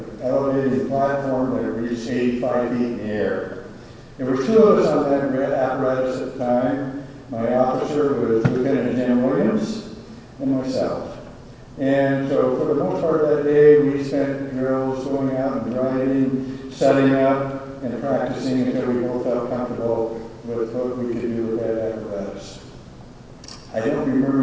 elevated platform that reached 85 feet in the air. There were 2 of us on that apparatus at the time. My officer was Lieutenant Jim Williams and myself. And so for the most part of that day, we spent drills going out and driving, setting up, and practicing until we both felt comfortable with what we could do with that apparatus. I don't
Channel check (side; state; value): both; identical; correlation 1.00